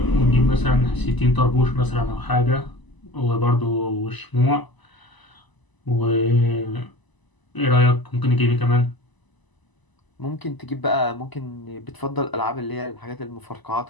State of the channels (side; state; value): right; late; 1.0 ms